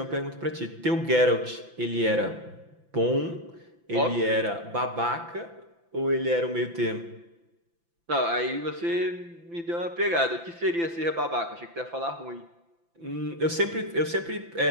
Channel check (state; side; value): late; left; 5.9 ms